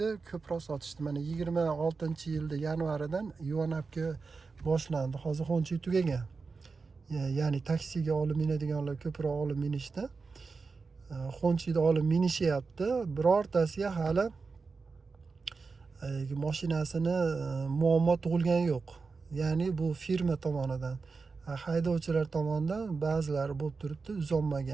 ko'proq sotishdi. Mana 26-yilda yanvaridan Yuvanabga boshlandi. Hozir xonchi tugagan. Ya'ni taksiga olib minadiganlar ko'proq olib minishdi. Xonchida olib minishyapti. Birortasiga hali mashinasini muammo tug'ilgani yo'q. Ya'ni bu firma tomonidan, haydovchilar tomonidan ba'zilari bo'lib turibdi,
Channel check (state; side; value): quieter; left; 4.5 dB